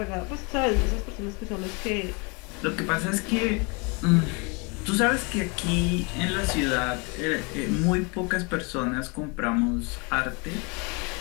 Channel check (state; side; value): quieter; right; 31.1 dB